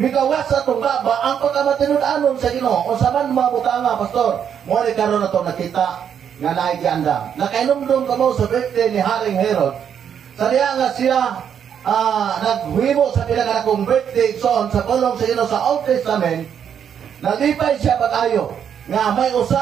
nigawas sa atong baba, ang pagkamatinud-anon sa Ginoo. O sa man mga butanga, Pastor, mo ni karon nato nakita nga naigiandam. Nakainumdum ka mo sa birthday ni Haring Herod. Sa diya nga siya naghuhimo sa pinagkanakong birthday son sa pulong sa Ginoo sa Old Testament, nalipay siya pag-ayo nga may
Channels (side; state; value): left; quieter; 8.3 dB